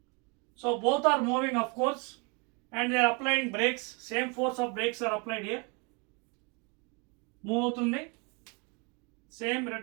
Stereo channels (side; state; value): left; quieter; 30.9 dB